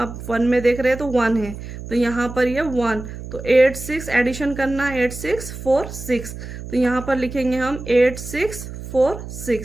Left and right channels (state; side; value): noise; right; hum, 11 dB below the sound